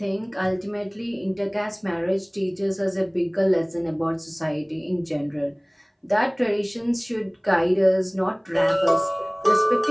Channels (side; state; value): both; identical; correlation 1.00